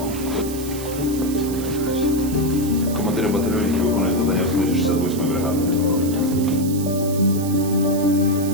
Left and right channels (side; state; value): right; noise; hiss, 12 dB below the sound